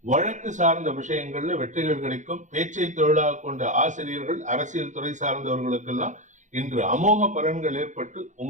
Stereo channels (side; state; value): left; late; 0.36 ms